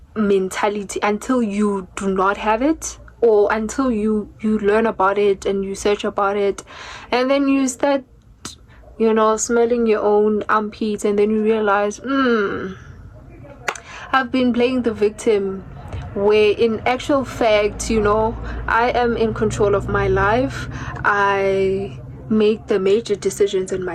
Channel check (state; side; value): identical; both; correlation 1.00